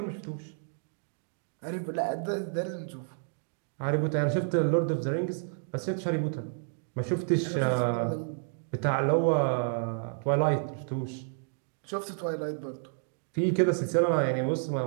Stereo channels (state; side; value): silent; left; digital silence